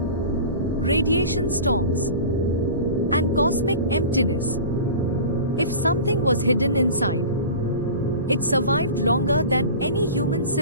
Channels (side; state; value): both; inverted; correlation -0.35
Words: storms, and cosmic emptiness. If something was hidden inside, it survived longer than any human